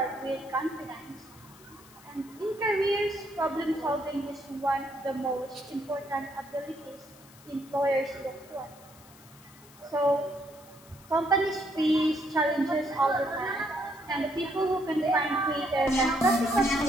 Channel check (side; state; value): left; noise; hiss, 23 dB below the sound